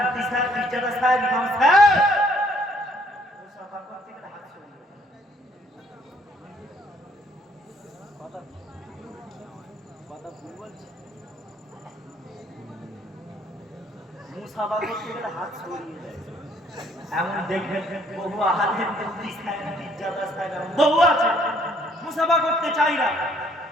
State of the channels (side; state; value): both; normal; correlation 0.64